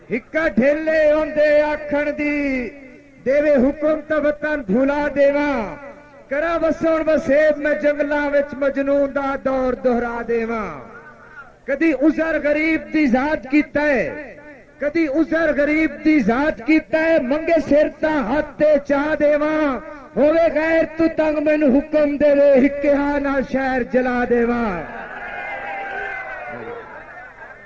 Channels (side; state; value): both; identical; correlation 1.00